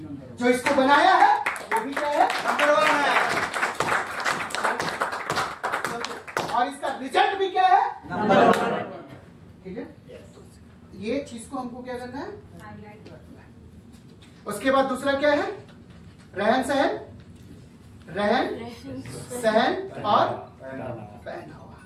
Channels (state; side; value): identical; both; correlation 1.00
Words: जो इसको बनाया है वो भी क्या है? नंबर 1 है। और इसका रिजल्ट भी क्या है? नंबर 1। ठीक है, ये चीज को हमको क्या करना है? उसके बाद दूसरा क्या है? रहन सहन और पहनावा।